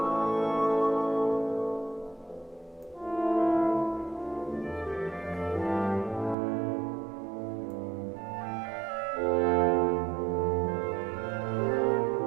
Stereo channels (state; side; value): drops out; left; at 6.4 s